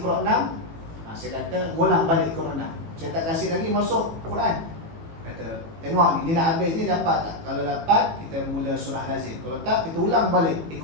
6, saya kata ulang balik Iqra 6. Saya tak kasih lagi masuk Quran. Kata, tengok ni nak habis ni dapat tak? Kalau dapat, kita mula surah lazim. Kalau tak, kita ulang balik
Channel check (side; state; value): left; late; 18 ms